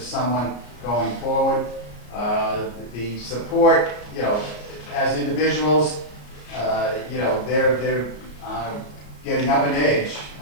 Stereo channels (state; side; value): late; right; 34 ms